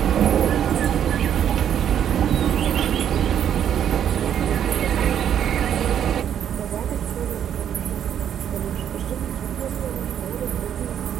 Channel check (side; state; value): left; quieter; 9.4 dB